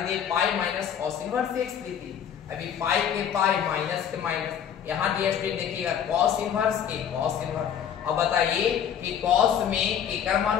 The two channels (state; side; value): quieter; right; 8.8 dB